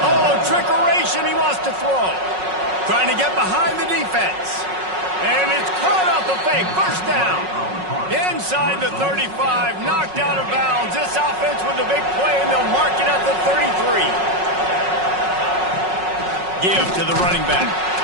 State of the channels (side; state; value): left; late; 5.4 ms